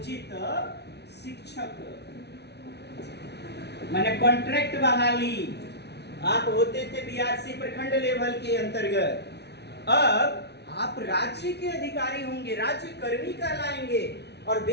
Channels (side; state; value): right; late; 0.49 ms